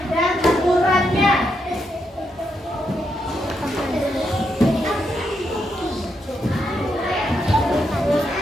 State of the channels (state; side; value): normal; both; correlation 0.81